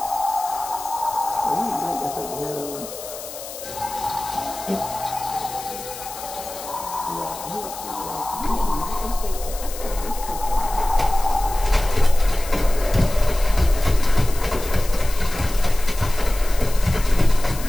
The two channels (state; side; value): noise; left; hiss, 12 dB below the sound